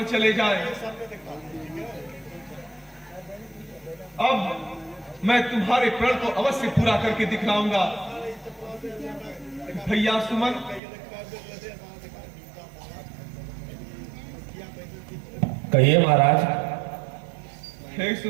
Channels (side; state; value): left; drops out; at 10.8 s